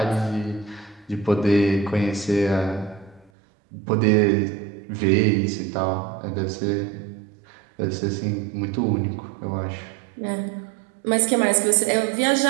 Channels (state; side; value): drops out; left; at 3.3 s